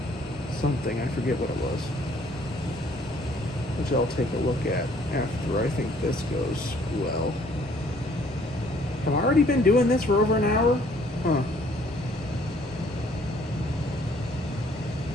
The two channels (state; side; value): normal; both; correlation 0.61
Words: something. I forget what it was. Which I'll take a look at after I think this goes well. Have I already been doing this for over an hour? Huh.